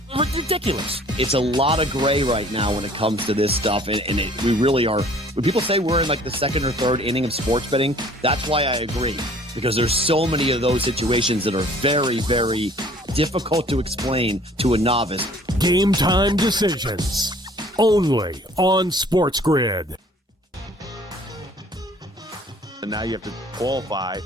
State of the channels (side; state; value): both; normal; correlation 0.54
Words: ridiculous. It's a lot of gray right now when it comes to this stuff, and we really are. When people say we're in like the 2nd or 3rd inning of sports betting, that's why I agree, because there's so many of those situations that are very, very difficult to explain to a novice. Game time decisions, only on SportsGrid. And now you have to qualify